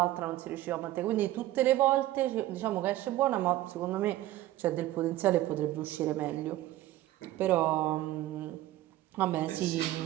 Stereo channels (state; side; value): quieter; left; 15.3 dB